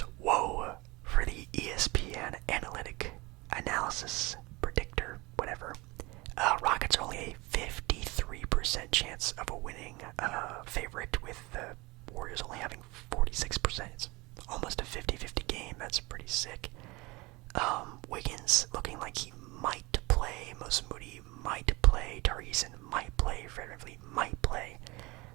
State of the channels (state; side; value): quieter; left; 23.4 dB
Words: Whoa! For the ESPN analysis predictor, whatever. Rockets are only a 53% chance of a winning favorite, with the Warriors only having 49%. It's almost a 50-50 game. That's pretty sick. Wiggins looking like he might play. Most Moody might play. Tariqson might play. Fred VanVleet might play.